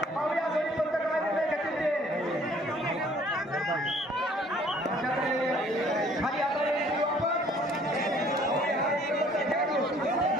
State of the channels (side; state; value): both; normal; correlation 0.58